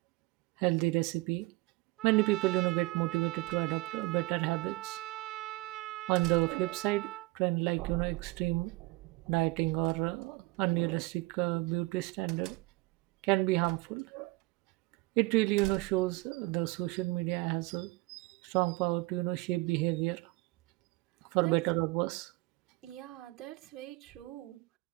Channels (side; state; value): left; quieter; 21.8 dB